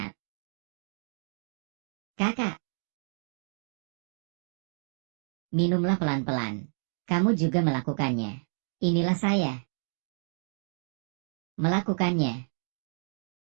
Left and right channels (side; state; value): left; silent; digital silence